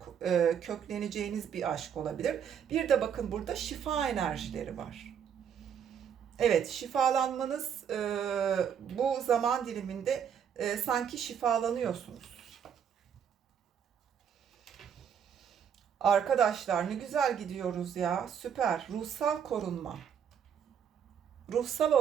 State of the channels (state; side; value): quieter; left; 8.0 dB